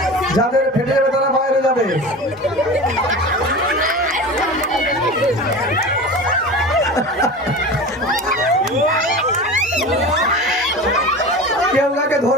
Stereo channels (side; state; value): both; normal; correlation 0.32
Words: যাদের ফেটে যাবে তারা বাইরে যাবে। কেউ কাকে